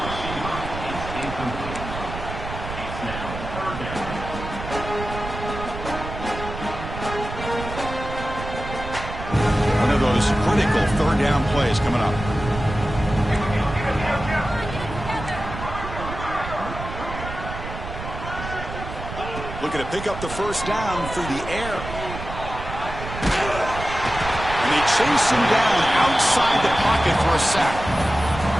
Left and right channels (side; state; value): right; noise; rumble, 9 dB below the sound